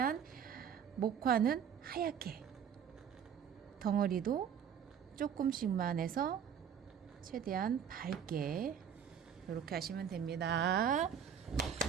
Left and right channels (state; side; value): quieter; left; 8.2 dB